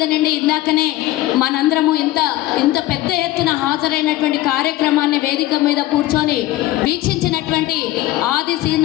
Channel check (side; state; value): right; quieter; 15.9 dB